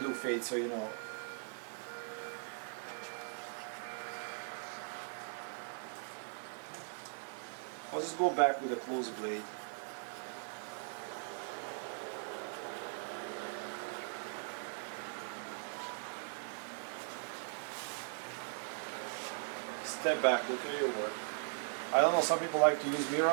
do fade, so you know. I'll just go back with a closed blade. Step back, look at your work. I don't know, some people like to use mirror.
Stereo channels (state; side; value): silent; left; digital silence